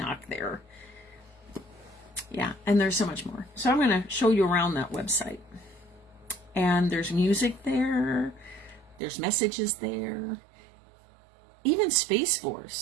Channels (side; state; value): left; drops out; at 9.0 s